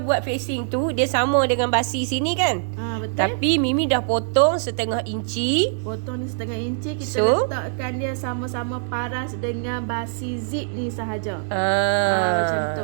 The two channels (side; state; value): left; silent; digital silence